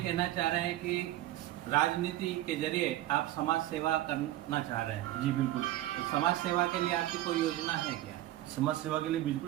चाह रहे हैं कि राजनीति के जरिए आप समाज सेवा करना चाह रहे हैं? जी बिल्कुल। तो समाज सेवा के लिए आपकी कोई योजना है क्या? समाज सेवा के लिए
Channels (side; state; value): left; quieter; 14.9 dB